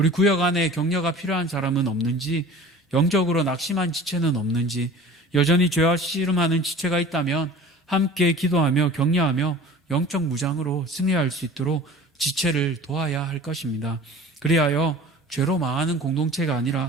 구역 안에 격려가 필요한 사람은 없는지, 영적으로 낙심한 지체는 없는지, 여전히 죄와 씨름하는 지체가 있다면 함께 기도하며 격려하며 영적 무장으로 승리할 수 있도록 지체를 도와야 할 것입니다. 그리하여 죄로 망하는 공동체가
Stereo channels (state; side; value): normal; both; correlation 0.42